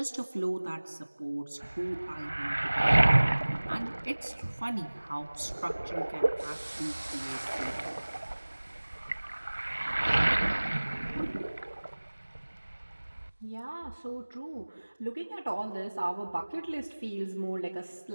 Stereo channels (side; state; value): both; inverted; correlation -1.00